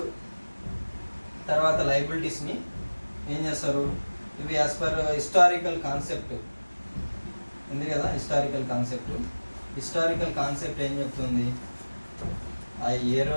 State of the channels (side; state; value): both; inverted; correlation -1.00